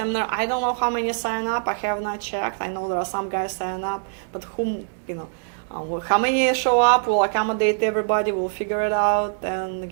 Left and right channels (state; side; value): silent; left; digital silence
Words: I don't know how many sign up. I have not checked. I know there are some guys sign up, but how many show up? We'll accommodate everybody. We'll figure it out. And